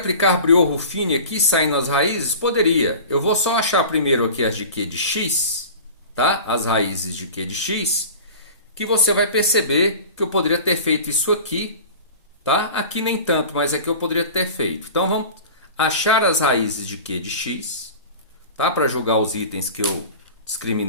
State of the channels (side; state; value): both; inverted; correlation -0.37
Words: Briot-Ruffini aqui, saindo as raízes? Poderia. Eu vou só achar primeiro aqui as de Q de x, tá? As raízes de Q de x, que você vai perceber que eu poderia ter feito isso aqui, tá? Aqui nem tanto, mas aqui eu poderia ter feito. Então, vamos achar as raízes de Q de x, tá? Para jogar os itens que eu